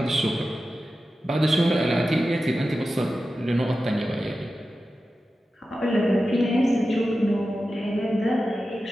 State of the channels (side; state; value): both; normal; correlation 0.93